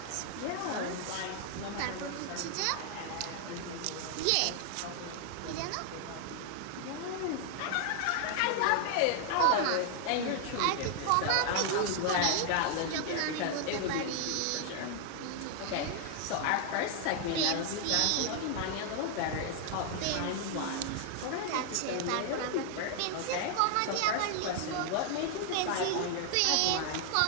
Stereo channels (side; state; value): both; different; correlation 0.00